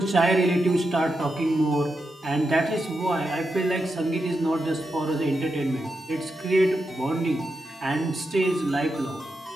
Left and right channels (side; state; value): both; normal; correlation 0.87